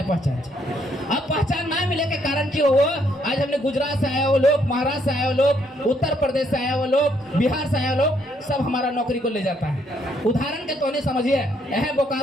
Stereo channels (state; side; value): normal; both; correlation 0.71